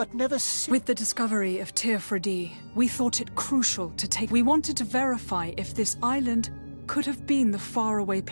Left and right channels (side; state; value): both; inverted; correlation -1.00